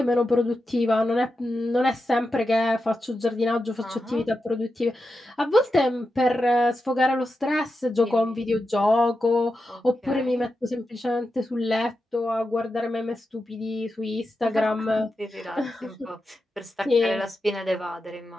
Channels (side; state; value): both; normal; correlation 0.89